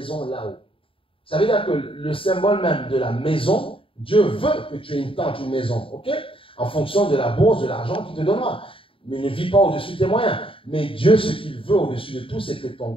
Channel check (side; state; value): right; late; 0.26 ms